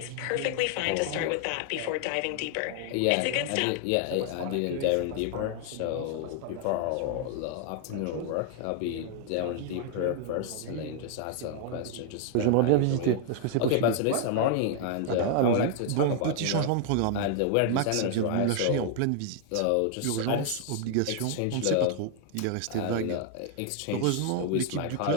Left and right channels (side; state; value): both; different; correlation 0.00